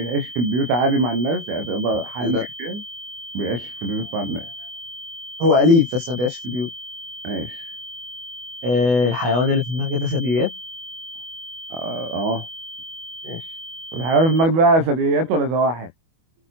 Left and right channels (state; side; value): late; left; 24 ms